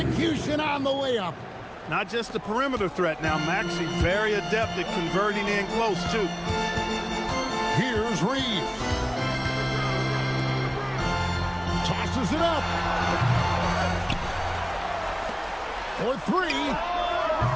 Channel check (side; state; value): both; identical; correlation 1.00